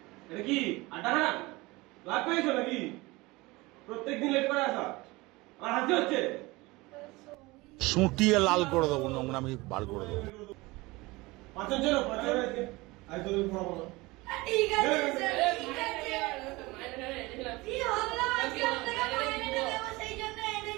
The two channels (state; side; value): quieter; left; 22.2 dB